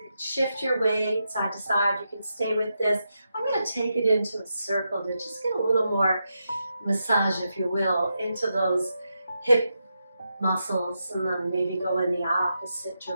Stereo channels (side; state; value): both; inverted; correlation -0.86